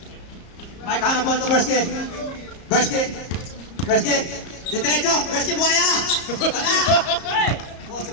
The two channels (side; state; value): right; late; 34 ms